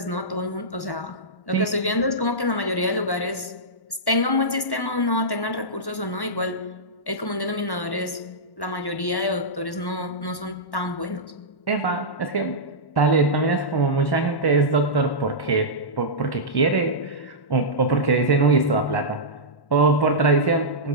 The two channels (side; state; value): right; late; 1.1 ms